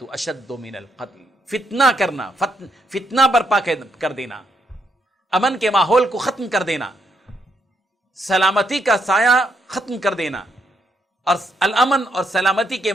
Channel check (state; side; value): normal; both; correlation 0.76